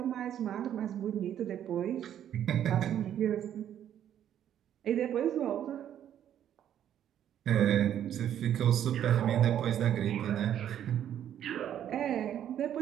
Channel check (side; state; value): left; quieter; 10.3 dB